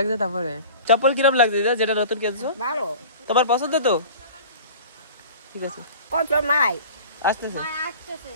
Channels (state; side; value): inverted; both; correlation -0.40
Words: তারপরে চপ্পল কিরম লাগছে দিদা, যেটা নতুন কিনছো? ভালো, তোমার পছন্দ তো? ঠিক আছে, কত মাই আসতেছে।